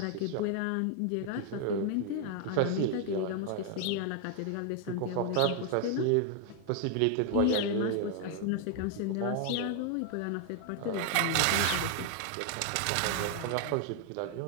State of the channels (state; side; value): different; both; correlation 0.00